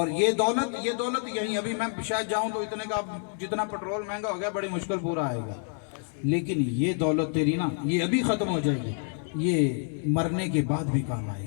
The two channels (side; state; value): right; silent; 59 dB below the other